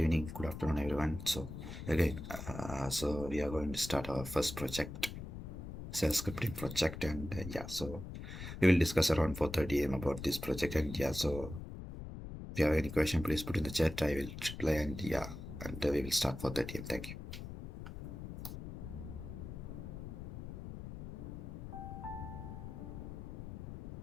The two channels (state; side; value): noise; left; rumble, 9 dB below the sound